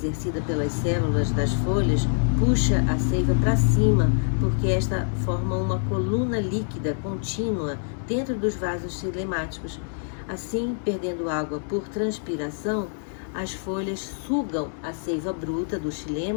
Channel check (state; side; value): silent; right; digital silence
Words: pelas células das folhas puxa a seiva para cima, porque esta forma uma coluna líquida contínua dentro dos vasos xilemáticos. Assim, perdendo água por transpiração, as folhas sugam a seiva bruta do